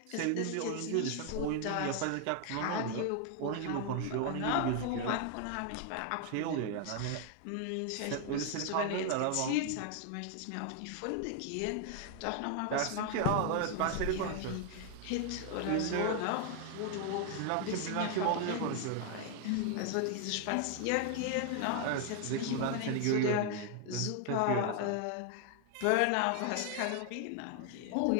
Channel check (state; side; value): different; both; correlation 0.00